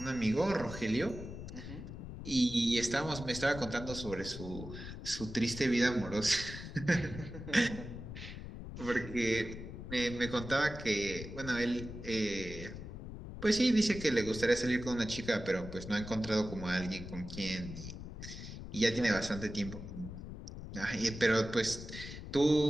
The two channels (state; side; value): noise; left; rumble, 10 dB below the sound